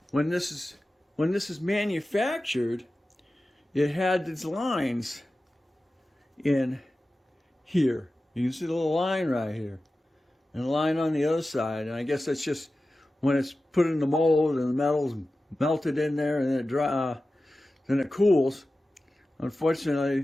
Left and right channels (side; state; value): both; normal; correlation 0.95